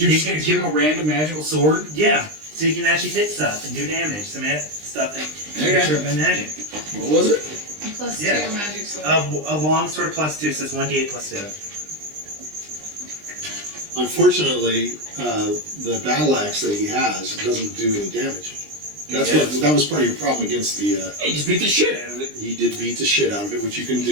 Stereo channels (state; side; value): late; left; 20 ms